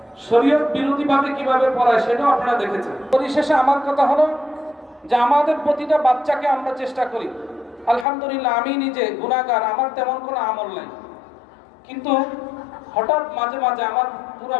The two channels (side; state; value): right; drops out; at 8.1 s